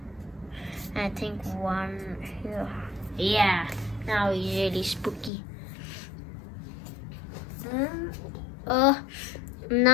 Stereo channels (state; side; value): drops out; right; at 5.3 s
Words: I think one here. Yeah, now he's really spooky.